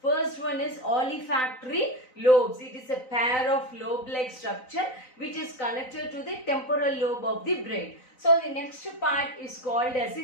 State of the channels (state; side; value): late; right; 4.0 ms